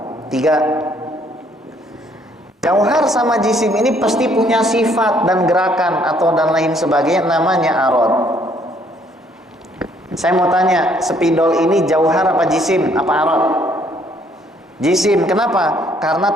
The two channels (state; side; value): normal; both; correlation 0.65